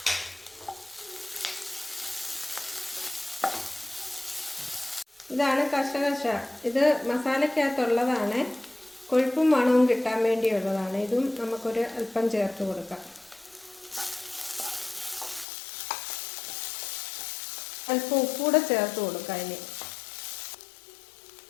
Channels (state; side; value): drops out; right; at 15.5 s